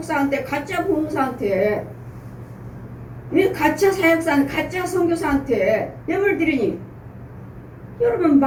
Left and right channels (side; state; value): both; identical; correlation 1.00